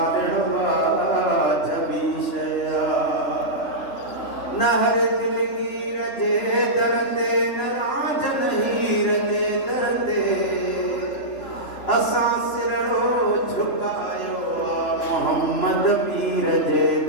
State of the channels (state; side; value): late; right; 3.4 ms